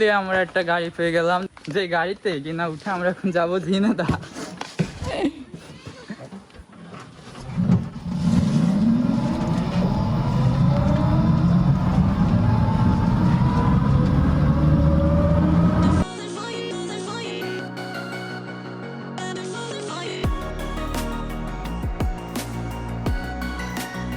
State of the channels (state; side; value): identical; both; correlation 1.00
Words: আমরা একটা গাড়ি পেয়ে গেলাম, যে গাড়িতে কিনা উঠে আমরা এখন যাবো ঝিনেদা।